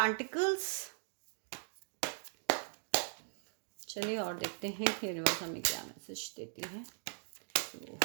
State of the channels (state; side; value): silent; left; digital silence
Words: चलिए और देखते हैं कि यूनिवर्स हमें क्या मैसेज देती है।